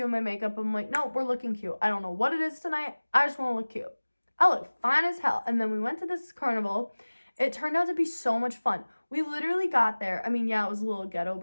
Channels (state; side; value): inverted; both; correlation -1.00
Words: my makeup. I'm like, no, we're looking cute. I don't know what it is tonight. I just want to look cute. I look fine as hell. And then we went to this carnival. It turned out to be so much fun. We literally got there. I mean, yeah, it was a little ghetto